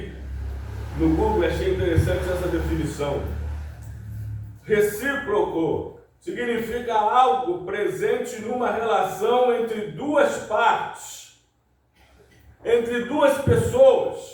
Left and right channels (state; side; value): identical; both; correlation 1.00